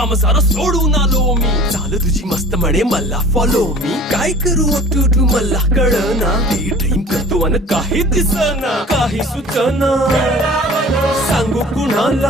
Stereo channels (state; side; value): normal; both; correlation 0.44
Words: सारा सोडून आलो मी झालं तुझी मस्त म्हणे मला फॉलो मी काय करू टू मला कळना ती ड्रीम करतो आणि काही दिसना काही सुचना सांगू